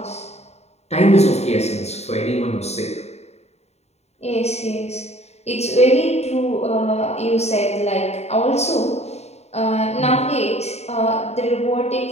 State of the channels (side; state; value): right; late; 0.31 ms